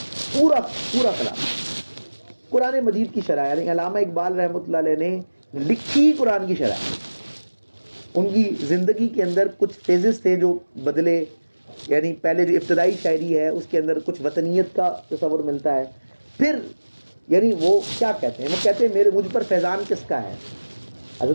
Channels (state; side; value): inverted; both; correlation -1.00